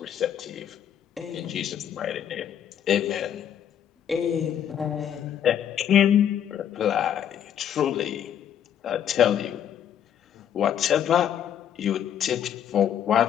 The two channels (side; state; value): right; quieter; 9.6 dB